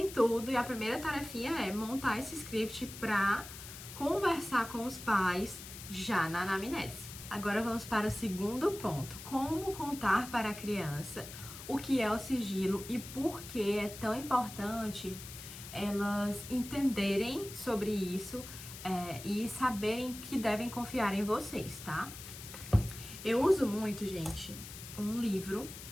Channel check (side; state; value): left; noise; hiss, 12 dB below the sound